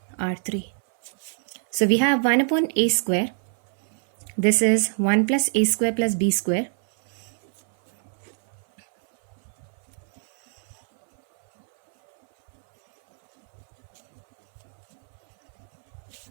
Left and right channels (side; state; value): left; silent; 58 dB below the other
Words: R3. So we have 1 upon a square. This is 1 plus a square plus b square.